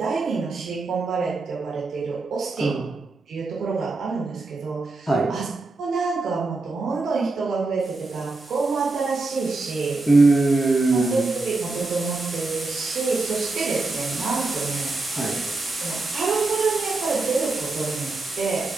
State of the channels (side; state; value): left; quieter; 3.5 dB